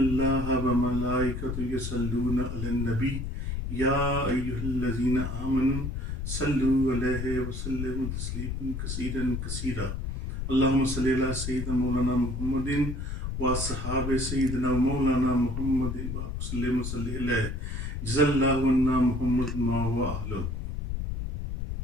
وملائکۃ یصلون علی النبی یا ایھا الذین آمنوا صلوا علیہ وسلموا تسلیما کثیرا کثیرا اللہم صلی علی سیدنا مولانا محمد و صحاب سیدنا مولانا محمد وسلم صلی علیہ جزا اللہ عنا محمد ما و اہلہ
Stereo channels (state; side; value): noise; left; rumble, 4 dB below the sound